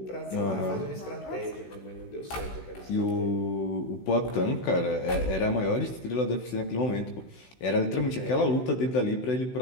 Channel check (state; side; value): late; right; 16 ms